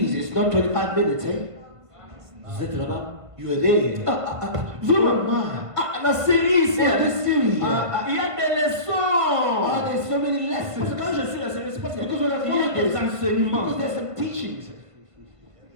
it's not 25 minutes, eh? Vous êtes là-bas. You are there. Vraiment. Ah, La série, c'est. yeah, this series. Il y a des leçons. There's so many Parce que lessons. quand je suis la série, c'est parce qu'il Because when I y a follow des this, enseignements. because there's some teachings.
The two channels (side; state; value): left; late; 1.5 ms